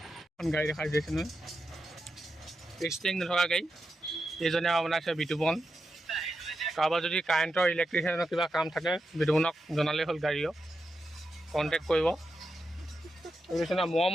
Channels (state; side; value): normal; both; correlation 0.88